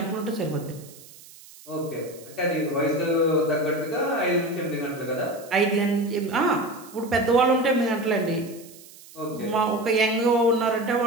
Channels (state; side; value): noise; right; hiss, 21 dB below the sound